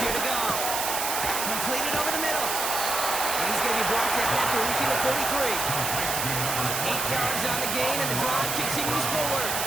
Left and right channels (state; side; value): noise; right; hiss, 1 dB below the sound